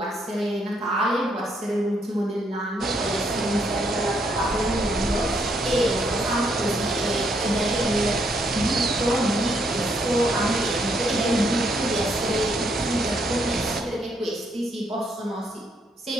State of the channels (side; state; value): both; normal; correlation 0.73